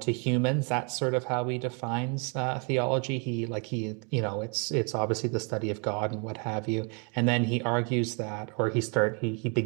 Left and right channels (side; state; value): left; quieter; 35.7 dB